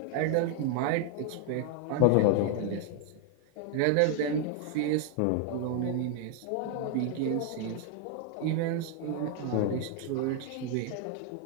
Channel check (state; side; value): different; both; correlation 0.00